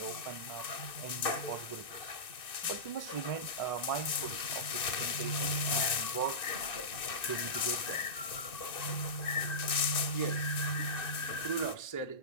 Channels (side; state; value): right; late; 1.9 ms